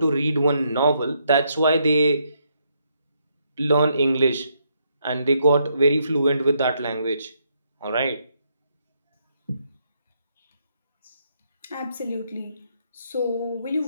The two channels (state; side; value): inverted; both; correlation -0.75